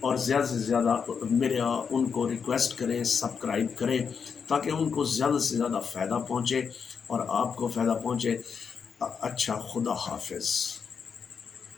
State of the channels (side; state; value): right; quieter; 6.3 dB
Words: زیادہ سے زیادہ ان کو ریکویسٹ کریں سبسکرائب کریں تاکہ ان کو زیادہ سے زیادہ فائدہ پہنچے اور آپ کو فائدہ پہنچے۔ اچھا، خدا حافظ۔